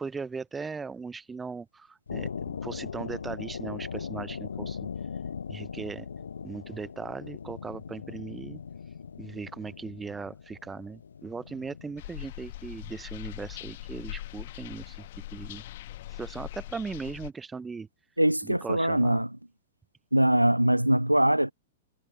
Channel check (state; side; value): inverted; both; correlation -0.73